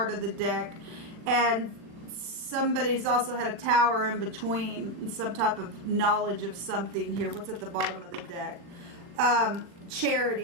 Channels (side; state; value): left; late; 40 ms